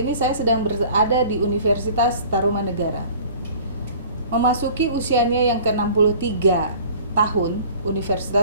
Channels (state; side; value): inverted; both; correlation -0.46